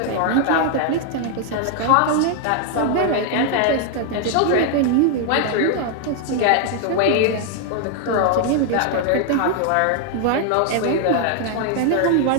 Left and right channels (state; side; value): different; both; correlation 0.00